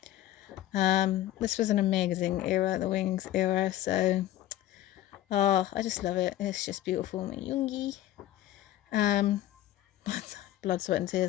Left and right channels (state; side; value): quieter; right; 13.5 dB